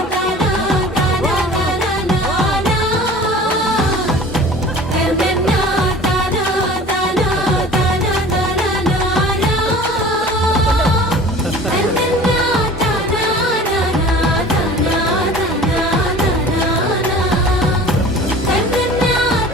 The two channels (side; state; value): both; normal; correlation 0.43